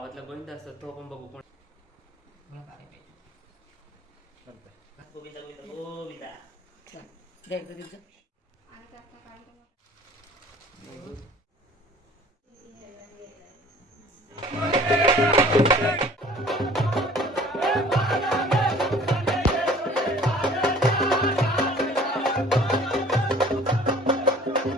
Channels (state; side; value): normal; both; correlation 0.50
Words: गोविंद असतो तो आपण बघू. कोण गोविंदा गोविंदा गोविंदा